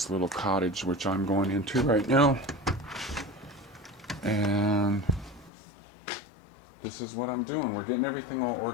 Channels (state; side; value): drops out; right; at 5.5 s